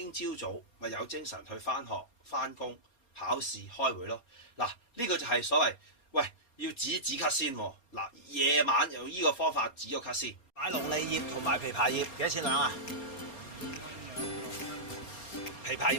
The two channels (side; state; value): right; late; 4.3 ms